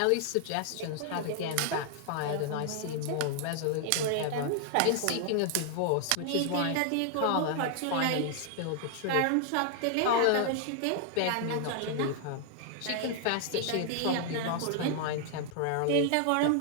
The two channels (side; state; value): both; different; correlation 0.00